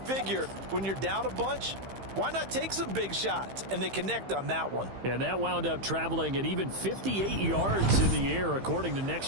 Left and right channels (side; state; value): left; late; 15 ms